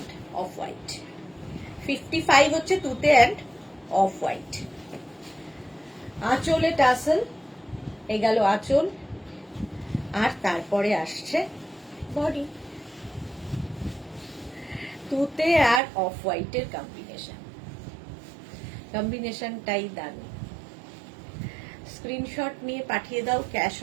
অফ হোয়াইট। 55 হচ্ছে তুতে অ্যান্ড অফ হোয়াইট। আঁচলে টাসেল, এই গেল আঁচল, আর তারপরে আসছে বডি। তুতে আর অফ হোয়াইটের কম্বিনেশনটাই দারুণ। স্ক্রিনশট নিয়ে পাঠিয়ে দাও। ক্যাশ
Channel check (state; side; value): drops out; left; at 15.8 s